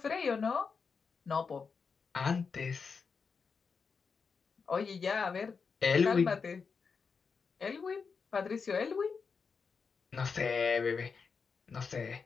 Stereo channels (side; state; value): right; quieter; 5.4 dB